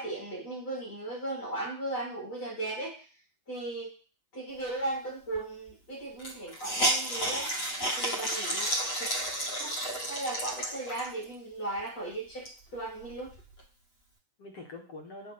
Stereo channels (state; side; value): late; right; 7.9 ms